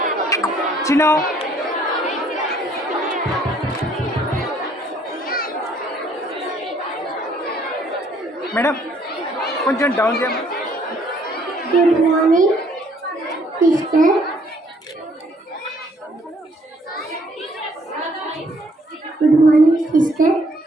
Chino. Madam, కొంచెం down చేయమ్మా. Good morning, sister. Good morning, sister.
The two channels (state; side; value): normal; both; correlation 0.64